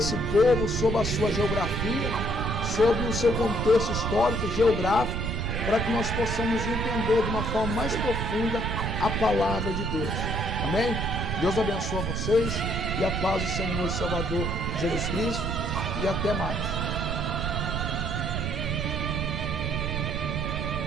povo, sobre a sua geografia, sobre o seu contexto histórico, geográfico, para que nós possamos entender de uma forma mais profunda a palavra de Deus. Amém? Deus abençoe vocês e a paz do Senhor e Salvador Jesus Cristo, e até mais.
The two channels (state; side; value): noise; right; rumble, 2 dB below the sound